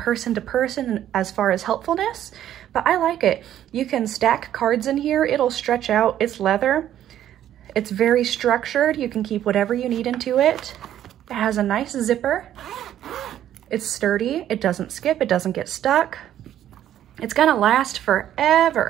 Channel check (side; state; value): left; quieter; 11.4 dB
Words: to person as far as helpfulness, but I like it. You can stack cards in here, it'll stretch out, it's leather. It's very structured, you can keep whatever you need into it. It has a nice zipper. It's sturdy, it doesn't skip, it doesn't get stuck. It's gonna last